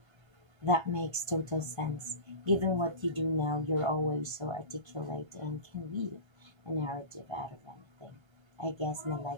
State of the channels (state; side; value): late; left; 1.3 ms